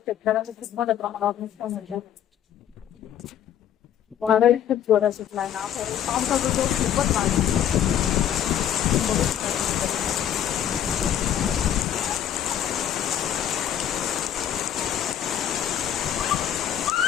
खूप मोठ्या प्रमाणावर नुकसान होतं. वादळी खूप जोरात सुटलाय ना, पावसाचा जोर खूपच वाढला. बघू शकता.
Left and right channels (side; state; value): right; quieter; 10.2 dB